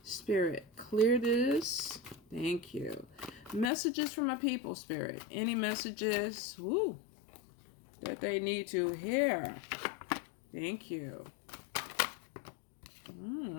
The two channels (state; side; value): drops out; right; at 3.7 s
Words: Spirit, clear this. Thank you. Messages from my people, Spirit. Any messages that they need to hear? Thank you.